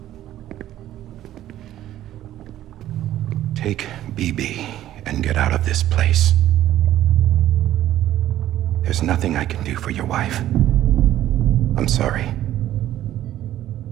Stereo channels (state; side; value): quieter; left; 12.9 dB